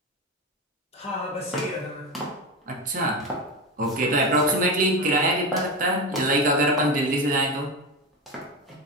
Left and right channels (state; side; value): normal; both; correlation 0.19